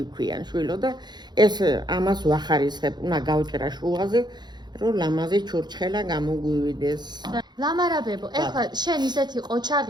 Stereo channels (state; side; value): late; left; 0.21 ms